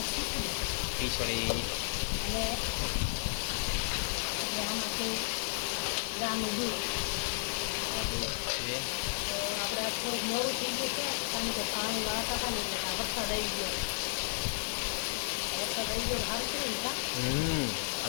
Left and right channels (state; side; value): silent; right; digital silence